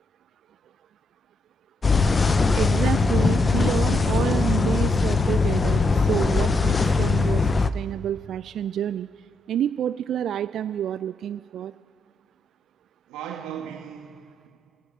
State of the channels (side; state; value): both; normal; correlation 0.79